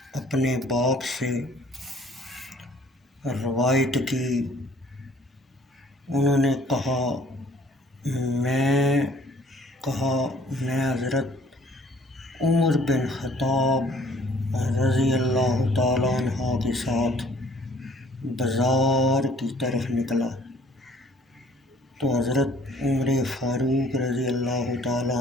اپنے باپ سے روایت کی، انہوں نے کہا میں حضرت عمر بن خطاب رضی اللہ تعالیٰ عنہ کے ساتھ بازار کی طرف نکلا تو حضرت عمر فاروق رضی اللہ تعالیٰ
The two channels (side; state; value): both; normal; correlation 0.56